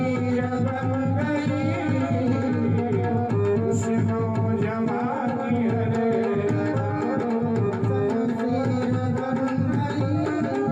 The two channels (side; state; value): both; identical; correlation 1.00